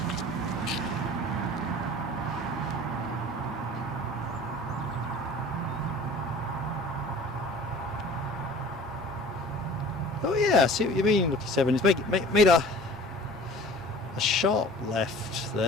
Oh yeah, I see what you mean, Lucky 7. It's made a sharp left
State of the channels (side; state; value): both; normal; correlation 0.44